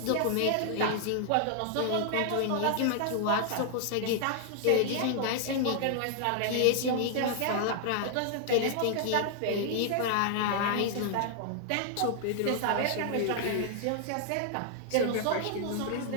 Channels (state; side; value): different; both; correlation 0.00